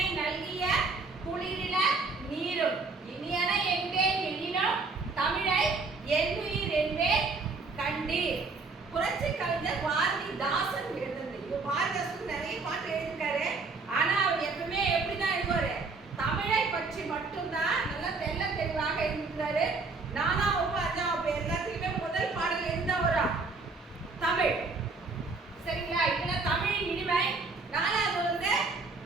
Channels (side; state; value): left; quieter; 4.0 dB